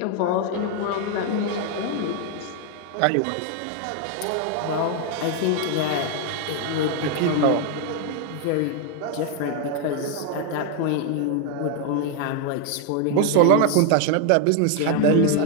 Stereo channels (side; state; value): both; different; correlation 0.01